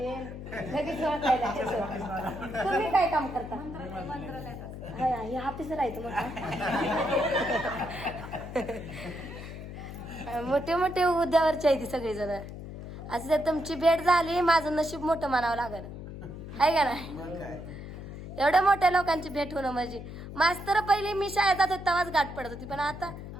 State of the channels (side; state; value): left; noise; hum, 10 dB below the sound